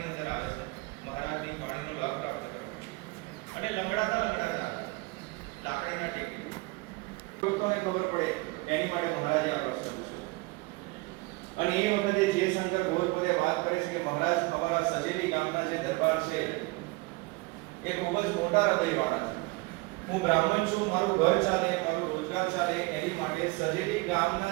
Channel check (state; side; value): quieter; left; 24.6 dB